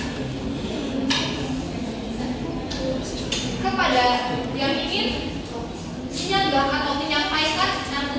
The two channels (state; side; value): identical; both; correlation 1.00